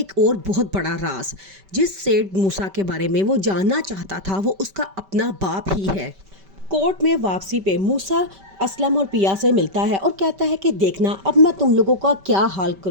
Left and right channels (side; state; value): left; late; 5.2 ms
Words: और बहुत बड़ा राज। जिस सेठ मूसा के बारे में वो जानना चाहता था वो उसका अपना बाप ही है। कोर्ट में वापसी पे मूसा असलम और पिया से मिलता है और कहता है कि देखना अब मैं तुम लोगों का क्या हाल